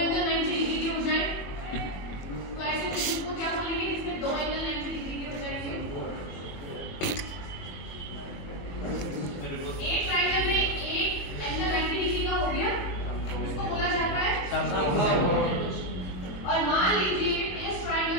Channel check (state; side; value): late; right; 21 ms